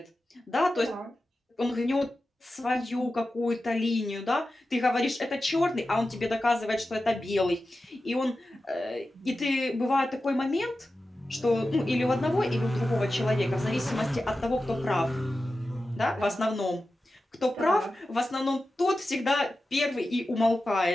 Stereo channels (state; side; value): normal; both; correlation 0.93